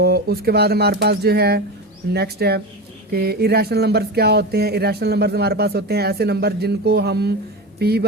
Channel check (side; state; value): both; normal; correlation 0.23